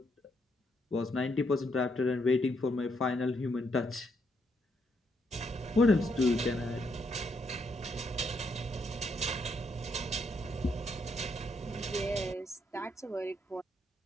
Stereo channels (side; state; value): both; normal; correlation 0.76